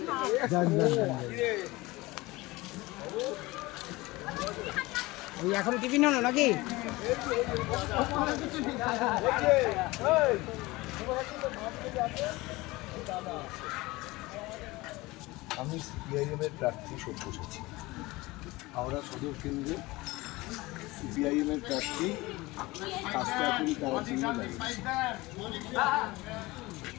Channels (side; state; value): right; quieter; 21.1 dB